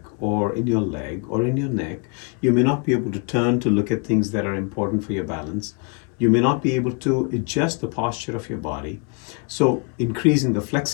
or in your leg or in your neck, you may not be able to turn to look at things that are important for your balance. You may not be able to adjust the posture of your body. So increasing the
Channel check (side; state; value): right; quieter; 36.3 dB